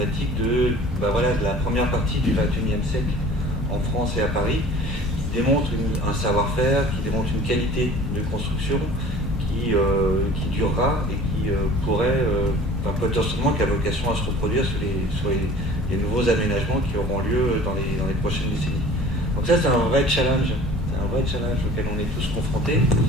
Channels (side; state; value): both; normal; correlation 0.45